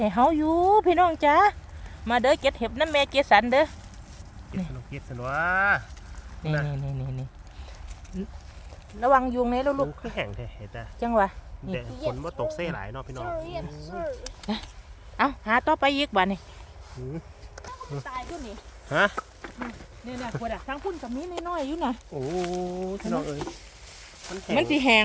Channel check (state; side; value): identical; both; correlation 1.00